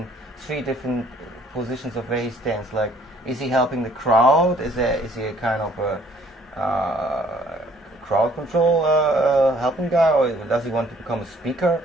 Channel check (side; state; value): both; normal; correlation 0.60